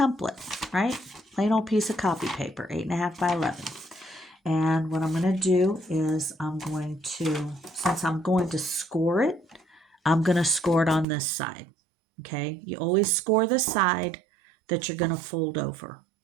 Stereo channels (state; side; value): drops out; left; at 11.1 s